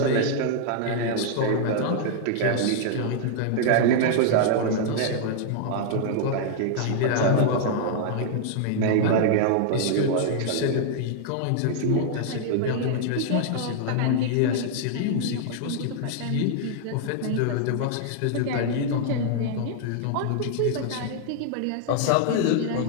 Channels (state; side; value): different; both; correlation -0.01